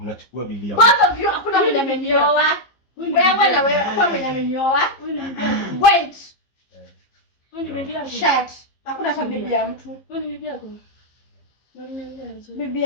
bilia. Baba vyo hakuna mwenye amenioa. Wewe na wewe hakuna mwenye amenioa. Wait. Wewe ni bibi yako. Shut. Hakuna fa bibi ya mtu. Wewe ni bibi yako. Bibi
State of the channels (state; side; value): late; right; 15 ms